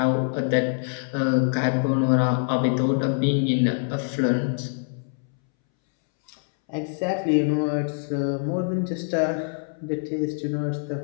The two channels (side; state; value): right; silent; 62 dB below the other